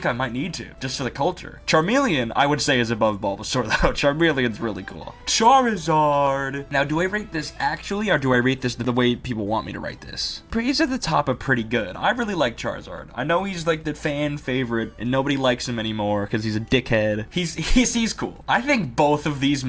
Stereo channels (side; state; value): both; identical; correlation 1.00